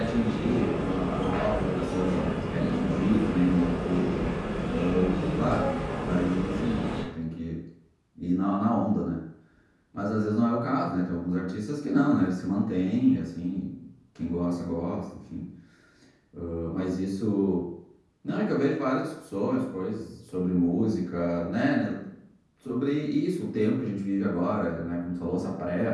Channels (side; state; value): both; identical; correlation 1.00